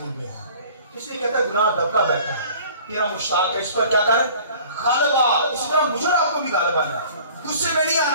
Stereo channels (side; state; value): both; inverted; correlation -0.48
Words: میں ہے. اس لیے کہتا ہے گناہ دبکا بیٹھا ہے، تیرا مشتاق ہے، اس پر کیا کر غالب آ. اسی طرح مجھے اور آپ کو بھی غالب آنا ہے، غصے میں نہیں